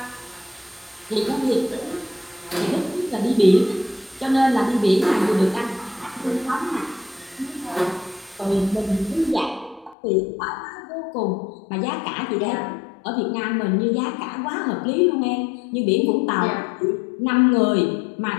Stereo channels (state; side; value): drops out; right; at 10.0 s